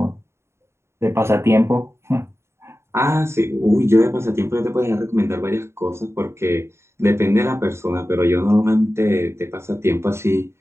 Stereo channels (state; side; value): late; left; 0.13 ms